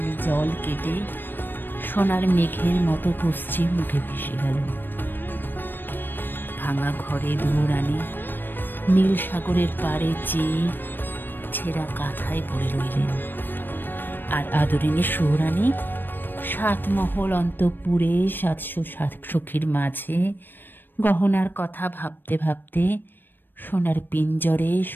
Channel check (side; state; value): right; late; 0.094 ms